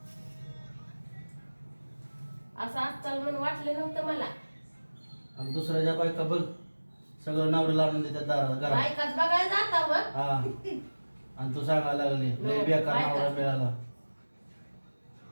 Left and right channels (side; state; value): both; inverted; correlation -1.00